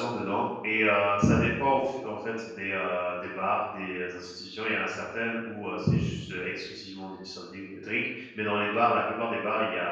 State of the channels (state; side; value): identical; both; correlation 1.00